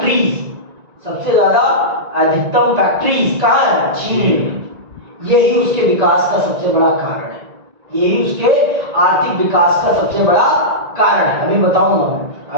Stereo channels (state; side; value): late; left; 1.9 ms